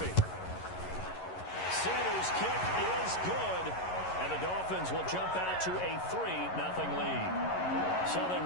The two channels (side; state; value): right; late; 11 ms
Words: Sanders' kick is good, and the Dolphins will jump out to a 3-0 lead. So they